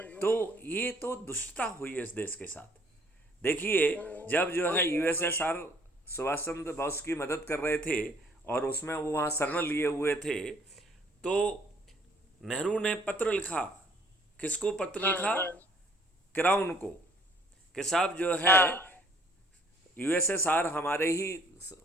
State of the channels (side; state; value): both; normal; correlation 0.60